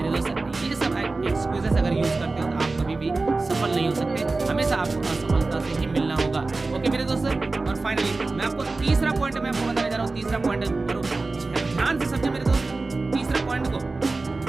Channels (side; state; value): left; quieter; 3.5 dB